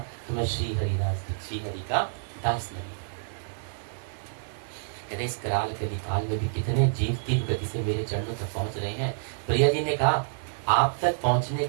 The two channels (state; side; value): silent; left; 59 dB below the other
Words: तो मैं श्री हरि का दास नहीं। कहते इस कराल कलिकाल में भी कितने जीव तीव्र गति से मेरे चरणों तक पहुंच रहे हैं। प्रिया जी ने कहा आप तक पहुंचने